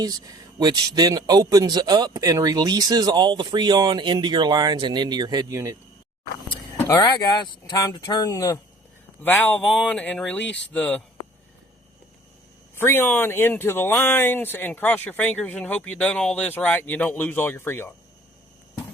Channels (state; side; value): normal; both; correlation 0.51